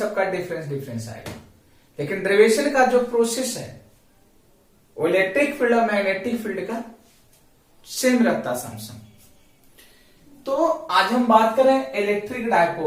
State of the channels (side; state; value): both; identical; correlation 1.00